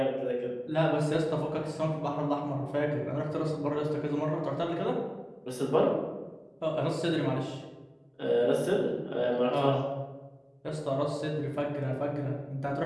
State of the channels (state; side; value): identical; both; correlation 1.00